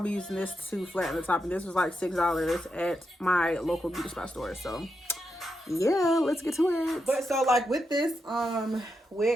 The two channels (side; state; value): both; normal; correlation 0.85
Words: using this to flatten the top. And this was like $6 at my local beauty spot store. So yeah, let's get to it. But so like with this